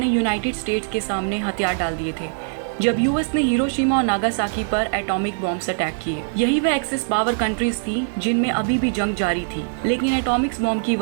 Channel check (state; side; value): silent; left; digital silence